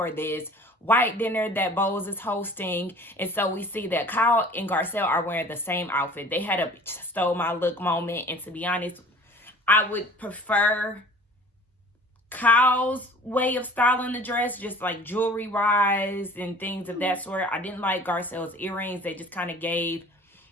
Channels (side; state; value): both; normal; correlation 0.47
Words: this white dinner that Bose is hosting. And so we see that Kyle and Garcelle are wearing the same outfit. They had a stole my look moment. And to be honest, I would prefer Kyle's way of styling the dress, just like jewelry wise and things of that sort. I didn't like Garcelle's earrings. They just kind of gave,